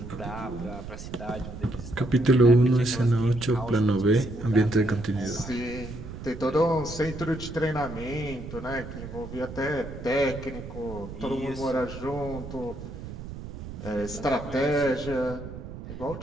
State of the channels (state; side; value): noise; right; rumble, 11 dB below the sound